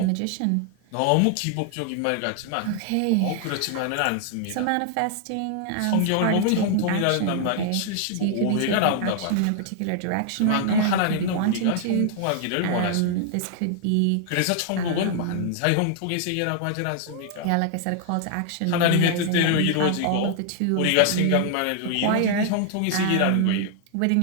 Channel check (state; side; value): different; both; correlation 0.00